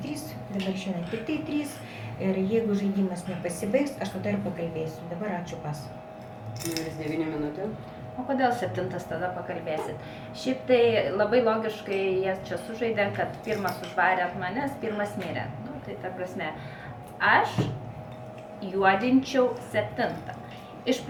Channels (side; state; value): both; identical; correlation 1.00